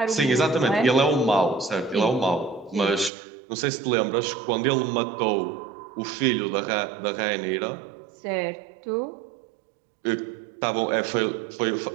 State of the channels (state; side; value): drops out; left; at 3.1 s